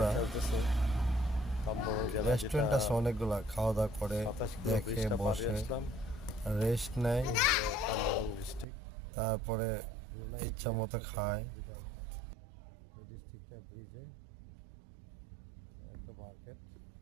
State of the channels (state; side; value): drops out; left; at 8.7 s